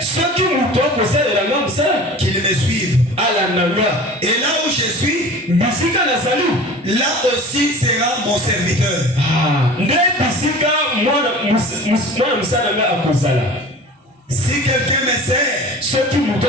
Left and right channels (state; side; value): normal; both; correlation 0.39